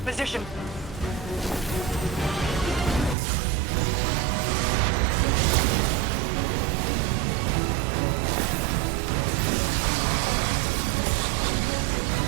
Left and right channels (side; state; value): left; drops out; at 3.2 s